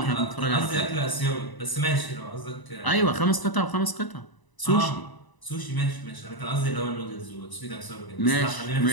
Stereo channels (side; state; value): right; late; 1.0 ms